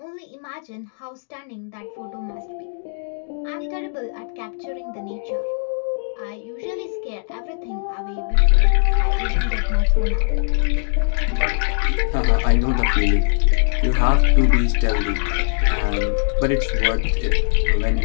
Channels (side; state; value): right; silent; digital silence